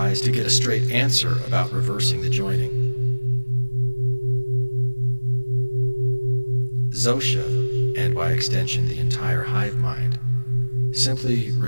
to get a straight answer about reversing the joining. Zosha, and by extension the entire hive mind, simply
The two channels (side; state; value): both; inverted; correlation -1.00